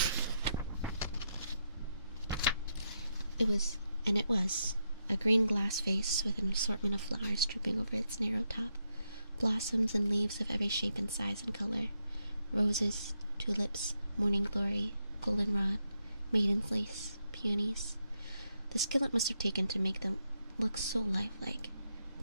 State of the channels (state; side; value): inverted; both; correlation -0.82